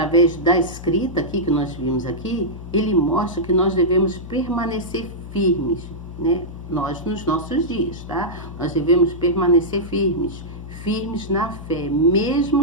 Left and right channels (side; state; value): left; noise; hum, 12 dB below the sound